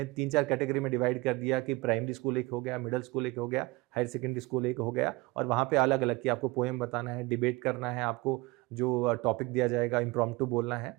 3-4 कैटेगरी में डिवाइड कर दिया कि प्राइमरी स्कूल एक हो गया, मिडिल स्कूल एक हो गया, हायर सेकेंडरी स्कूल एक हो गया, और वहाँ पे अलग अलग कि आपको पोएम बताना है, डिबेट करना है, आपको जो टॉपिक दिया जाएगा इम्प्रॉम्प्टू बोलना है।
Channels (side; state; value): left; quieter; 22.9 dB